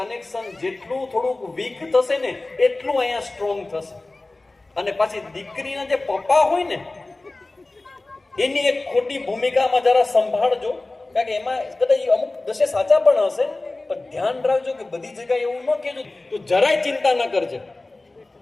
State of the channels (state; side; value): quieter; right; 3.0 dB